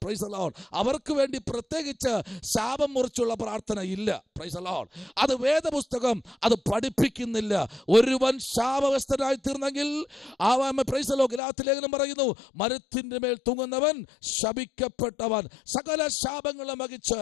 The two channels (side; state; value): right; drops out; at 11.4 s